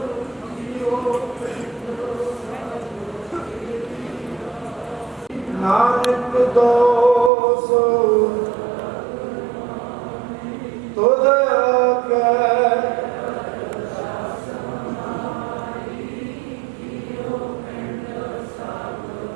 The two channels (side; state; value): left; drops out; at 7.3 s